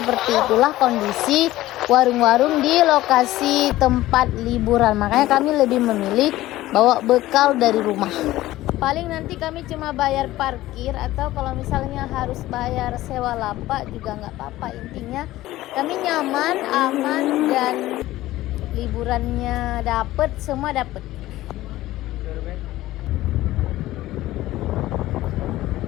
itulah kondisi warung-warung di lokasi tempat liburan. Makanya kami lebih memilih bawa bekal dari rumah. Paling nanti kami cuma bayar parkir, atau kalau misalnya harus bayar sewa lapak juga nggak apa-apa. Intinya kami nyaman, aman, dan liburannya dapet, semua dapet.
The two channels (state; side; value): quieter; right; 16.1 dB